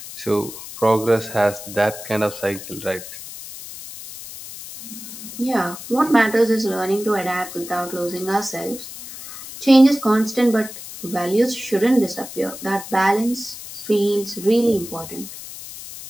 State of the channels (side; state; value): left; noise; hiss, 12 dB below the sound